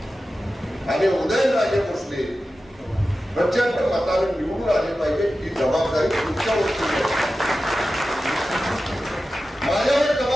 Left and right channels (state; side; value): normal; both; correlation 0.93